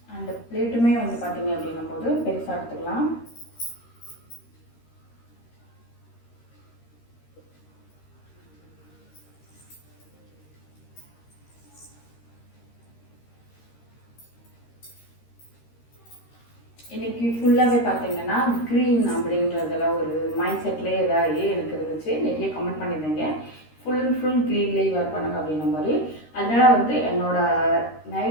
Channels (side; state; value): right; late; 13 ms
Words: அந்த பிளேட்டுமே வந்து பார்த்தீங்க அப்படின்னும் போது பெருசாக எடுத்துக்கலாம். இன்றைக்கி ஃபுல்லாகவே பார்த்தீங்கன்னா க்ரீன் அப்படின்றதில் ஒரு மைண்ட் செட்லேயே இதாகி எனக்கு இருந்துச்சு. நிறைய கமெண்ட் பண்ணியிருந்தீங்க ஃபுல் க்ரீன்லேயே வேர் பண்ணுங்க அப்படின்ற மாதிரி. அதனால் வந்து என்னோடய